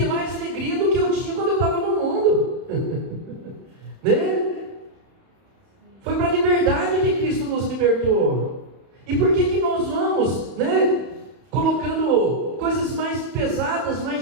mais alegria do que eu tinha quando eu estava no mundo, né? Foi para a liberdade que Cristo nos libertou. E por que nós vamos, né, colocando coisas mais pesadas,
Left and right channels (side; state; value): left; late; 31 ms